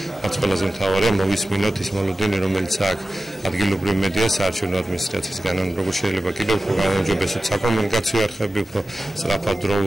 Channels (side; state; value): both; normal; correlation 0.94